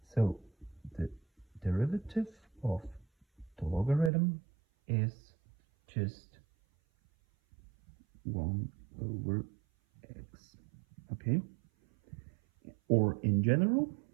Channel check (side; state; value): left; drops out; at 4.1 s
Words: So the derivative of the logarithm is just 1 over x. Okay? Or in general,